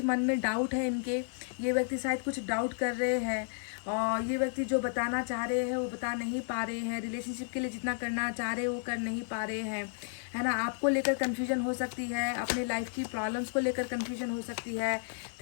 मन में डाउट है इनके, ये व्यक्ति शायद कुछ डाउट कर रहे हैं और ये व्यक्ति जो बताना चाह रहे हैं वो बता नहीं पा रहे हैं। रिलेशनशिप के लिए जितना करना चाह रहे हैं वो कर नहीं पा रहे हैं, है ना। आपको लेकर कन्फ्यूजन हो सकती है, अपने लाइफ की प्रॉब्लम्स को लेकर कन्फ्यूजन हो सकती है,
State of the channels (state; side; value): silent; right; digital silence